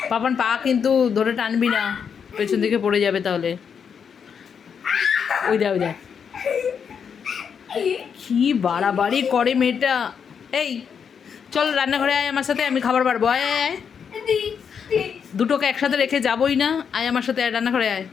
পাপান পা কিন্তু ধরে টানবি না, পেছন দিকে পড়ে যাবে তাহলে। ওই দে ওই দে, কি বাড়াবাড়ি করে মেয়েটা। এই চল রান্নাঘরে আয় আমার সাথে, আমি খাবার বাড়বো। আয় আয় আয়, দুটোকে একসাথে রেখে যাবোই না। আয় আমার সাথে, আয় রান্নাঘরে আয়।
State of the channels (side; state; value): right; quieter; 7.0 dB